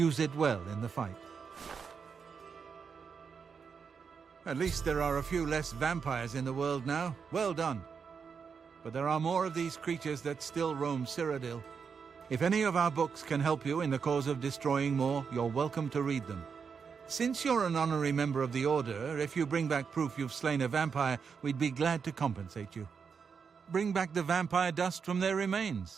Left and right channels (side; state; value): left; quieter; 6.1 dB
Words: it well in the fight. At least there are a few less vampires in the world now. Well done. But there are more of these creatures that still roam Cyrodiil. If any of our books can help you in the cause of destroying more, you're welcome to read them. Since you're an honorary member of the Order, if you bring back proof you've slain a vampire, we'd be glad to compensate you. Bring back the vampire dust from their